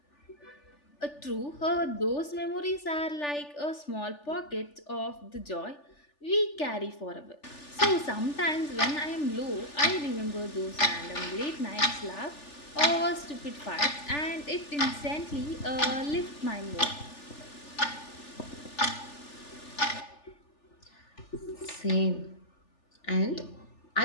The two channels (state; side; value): late; right; 3.4 ms